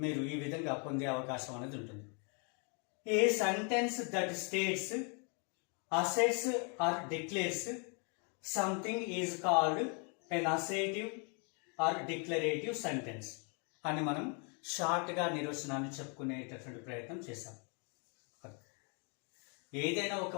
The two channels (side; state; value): right; quieter; 36.9 dB